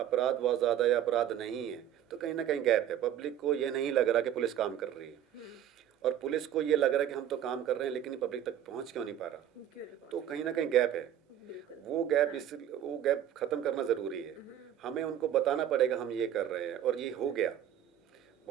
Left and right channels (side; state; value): left; quieter; 10.5 dB